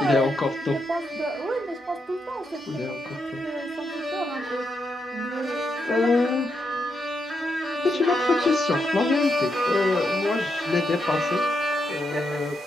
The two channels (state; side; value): normal; both; correlation 0.82